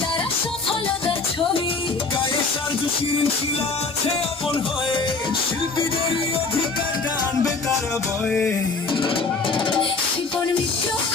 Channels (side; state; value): right; quieter; 4.1 dB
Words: তারা সফলতার ছবি। গায়ে সার্জু শিরিন শিলা আছে আপন হয়ে, শিল্পীদেরই অধিকার টানবে তারা বয়ে। শিপন মিত্র